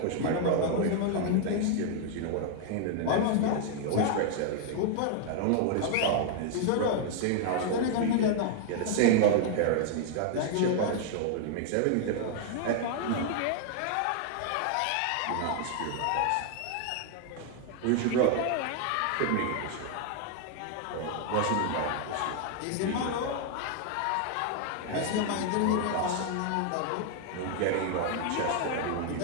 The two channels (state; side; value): different; both; correlation 0.00